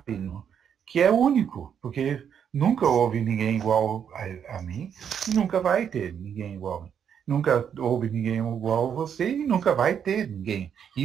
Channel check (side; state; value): left; quieter; 8.1 dB